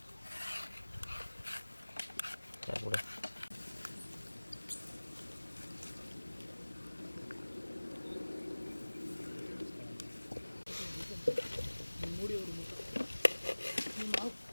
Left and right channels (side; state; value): both; inverted; correlation -1.00